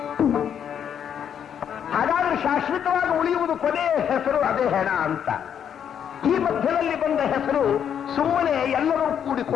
ಹಾಗಾದ್ರೆ ಶಾಶ್ವತವಾಗಿ ಉಳಿಯುವುದು ಕೊನೆಯ ಹೆಸರು, ಅದೇ ಹೆಣ ಅಂತ. ಈ ಮಧ್ಯದಲ್ಲಿ ಬಂದ ಹೆಸರು ಸುಮ್ಮನೆ ಎಲ್ಲರೂ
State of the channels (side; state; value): right; quieter; 8.6 dB